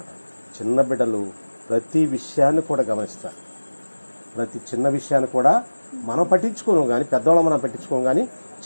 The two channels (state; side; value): inverted; both; correlation -1.00